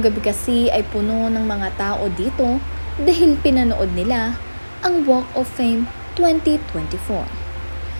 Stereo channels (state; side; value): inverted; both; correlation -1.00